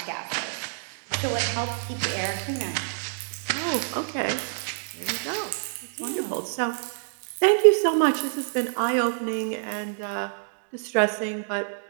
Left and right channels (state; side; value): silent; left; digital silence